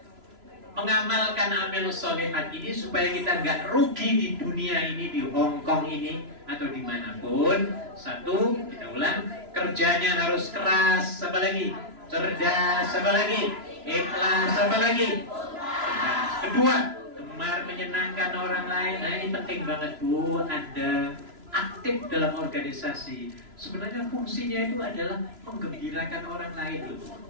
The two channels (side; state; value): left; late; 3.0 ms